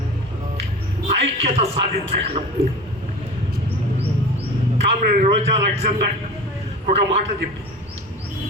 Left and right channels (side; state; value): both; normal; correlation 0.35